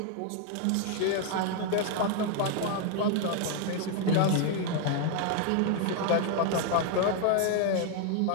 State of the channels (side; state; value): both; different; correlation 0.00